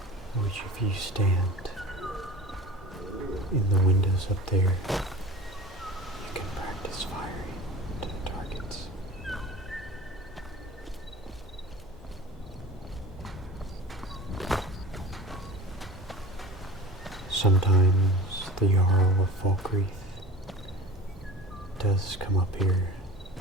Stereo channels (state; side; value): normal; both; correlation 0.37